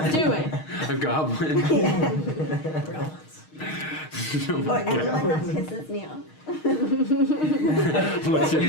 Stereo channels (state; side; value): late; right; 6.4 ms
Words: it. A goblin. Yeah. No, Or yeah. anyone that pisses me off. What's